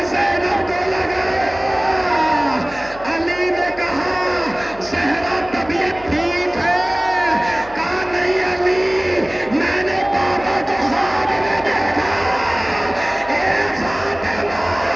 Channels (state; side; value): noise; left; hum, 21 dB below the sound